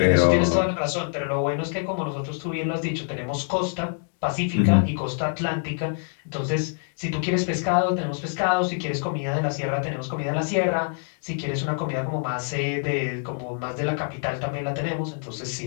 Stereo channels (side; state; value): right; silent; 61 dB below the other